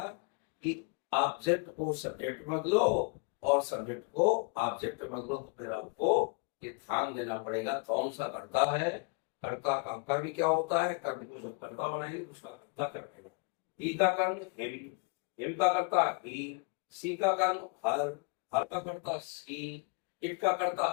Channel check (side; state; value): right; quieter; 35.2 dB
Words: कि ऑब्जेक्ट को सब्जेक्ट में बदलो और सब्जेक्ट को ऑब्जेक्ट में बदलो, तो फिर आपको ये ध्यान देना पड़ेगा कौन सा कर्ता है, कर्ता का कर्म क्या होता है, कर्म को जब कर्ता बनाएंगे उसका कर्ता क्या बनेगा। ई का कर्म हिम, हिम का कर्ता ही, सी का कर्म हर, हर का कर्ता सी, इट का कर्ता